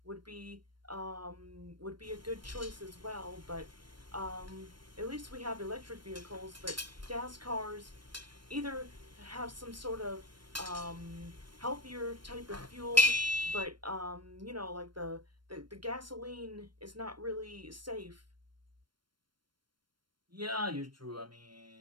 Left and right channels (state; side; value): late; left; 0.72 ms